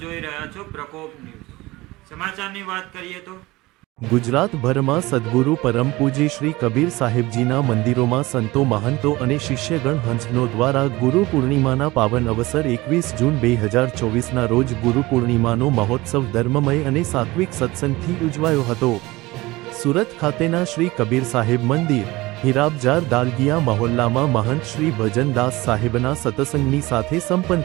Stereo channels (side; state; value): left; quieter; 20.4 dB